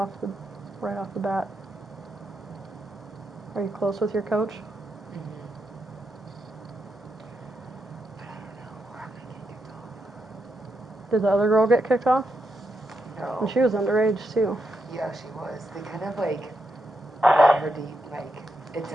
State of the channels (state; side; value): normal; both; correlation 0.83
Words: the bat. Are you close with your coach? Mhm. But I don't know where I'm gonna get kicked off. Did the other girl get kicked off? No. And she was underage too. Yeah, she was. They kind of like let her like it